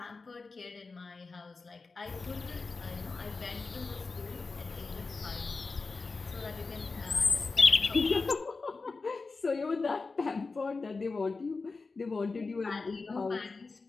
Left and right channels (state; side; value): quieter; right; 4.1 dB